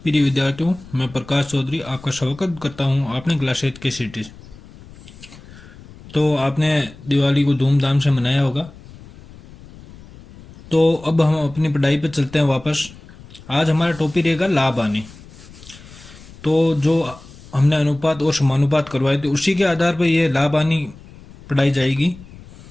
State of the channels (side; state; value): left; noise; rumble, 20 dB below the sound